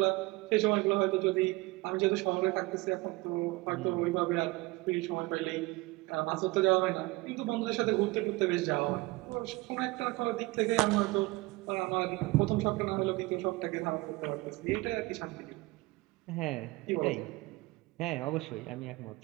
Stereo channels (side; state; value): left; quieter; 22.1 dB